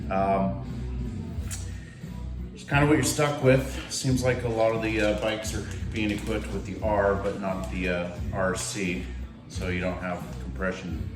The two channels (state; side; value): identical; both; correlation 1.00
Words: It's kind of what you're stuck with. Seems like a lot of the bikes are being equipped with the R, but not the RC, so you don't have compression